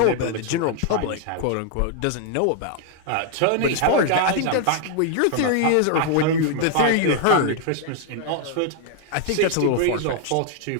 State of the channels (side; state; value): both; different; correlation 0.00